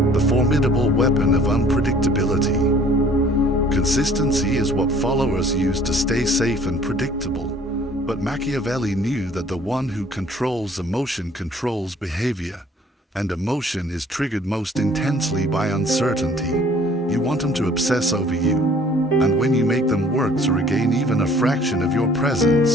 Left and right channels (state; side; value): normal; both; correlation 0.54